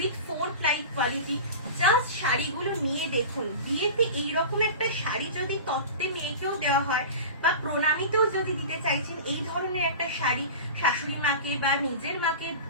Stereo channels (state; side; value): inverted; both; correlation -0.32